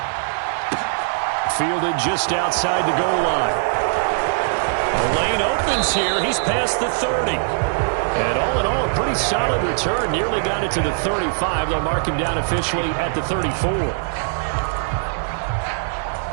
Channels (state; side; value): silent; left; 65 dB below the other